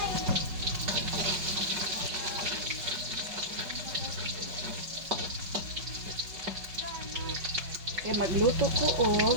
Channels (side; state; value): left; late; 5.3 ms